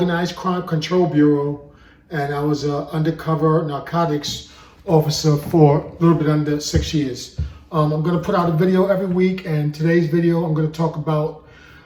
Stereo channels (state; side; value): identical; both; correlation 1.00